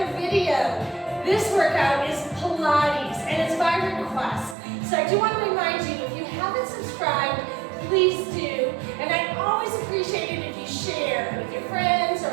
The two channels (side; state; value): left; drops out; at 4.5 s